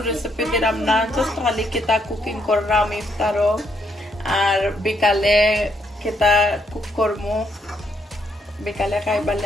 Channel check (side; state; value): both; normal; correlation 0.74